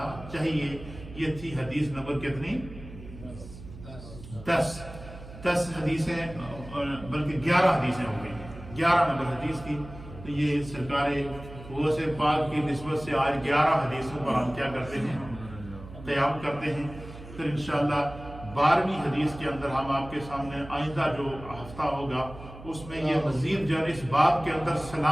چاہیے۔ یہ تھی حدیث نمبر کتنی؟ 10 حدیثیں، بلکہ 11 حدیثیں ہو گئی، 11 نمبر حدیث تھی۔ تو یہ سرکار غوث پاک کی نسبت سے آج 11 حدیثوں پر ہم کیا کرتے ہیں؟ قیام کرتے ہیں۔ پھر انشاءاللہ 12ویں حدیث کے اندر ہم آپ کے سامنے آئندہ جو ہفتہ ہوگا اس میں یہ مزید جو ہے اس باب کے اندر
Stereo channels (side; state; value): right; noise; hum, 15 dB below the sound